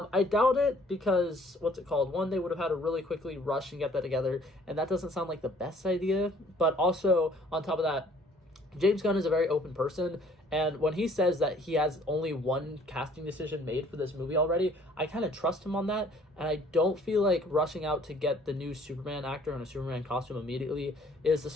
doubt it, because, one, they would have had to really quickly rush and get that together, and that doesn't sound like the best idea, but also, on top of that, James Gunn is a very open person, and when he says that he has only one casting decision made for this movie already, I kind of trust him on that, and I don't feel like rushing out to get the new Superman actor in a Superman costume immediately is the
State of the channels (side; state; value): both; normal; correlation 0.58